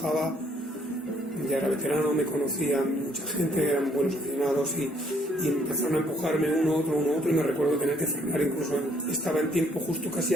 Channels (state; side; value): normal; both; correlation 0.66